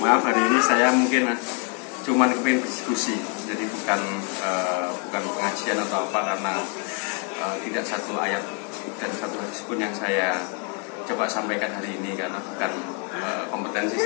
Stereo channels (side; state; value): right; quieter; 34.4 dB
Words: hari ini saya mungkin cuma kepingin berdiskusi, jadi bukan pengajian atau apa, karena tidak satu ayat dan satu hadis pun yang saya coba sampaikan hari ini karena bukan kompetensi